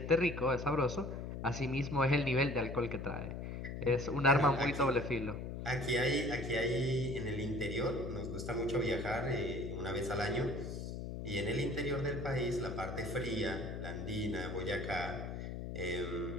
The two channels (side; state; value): left; noise; hum, 6 dB below the sound